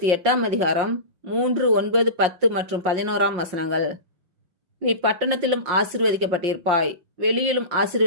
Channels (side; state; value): left; late; 5.5 ms